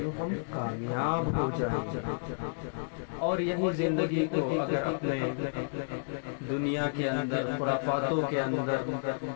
ہم کامیاب ہو جائیں گے۔ اور یہی زندگی کو اگر اپنے دنیا کے اندر خرافاتوں کے اندر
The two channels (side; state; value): right; silent; digital silence